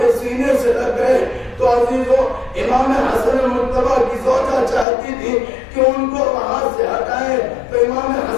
سینے سے لگ گئے تو عزیزو امام حسن مرتضیٰ کی زوجہ چاہتی تھی کہ ان کو وہاں سے ہٹائیں، تو امام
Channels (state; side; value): drops out; right; at 4.9 s